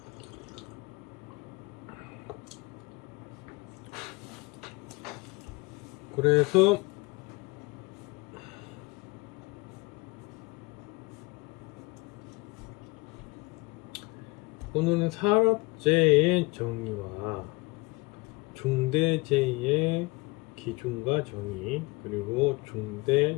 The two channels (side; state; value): right; quieter; 24.5 dB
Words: 오늘은 산업재해의 정의와 중대재해의 기준과 정의, 그리고